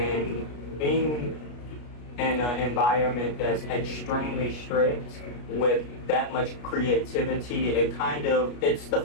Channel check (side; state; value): right; late; 33 ms